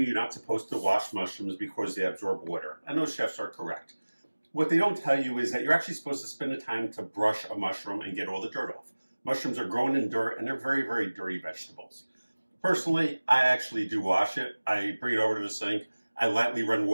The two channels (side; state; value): both; inverted; correlation -1.00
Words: you're not supposed to wash mushrooms because they absorb water, and those chefs are correct. What they don't tell you is that you're actually supposed to spend the time to brush a mushroom and get all the dirt off. Mushrooms are grown in dirt and they're very, very dirty vegetables. Personally, I actually do wash it. I bring it over to the sink. I lightly run